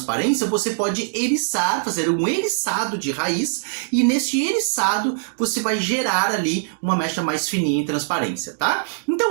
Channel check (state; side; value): silent; left; digital silence